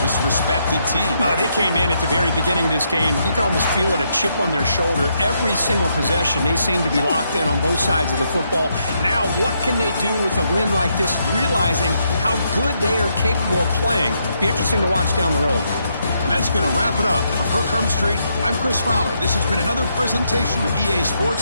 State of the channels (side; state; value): both; inverted; correlation -0.78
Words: this respected team. They came in at the very beginning of this game. You can almost feel it, a chip on their shoulder. Every single possession, they seem to be locked in on both sides of the football. Now, what can they do with a win like this, realizing how good they are capable of playing? Be interesting to watch down the road. And that's going to wrap it up. For Kirk Herbstreit, I'm Chris Fowler. This has been another presentation of EA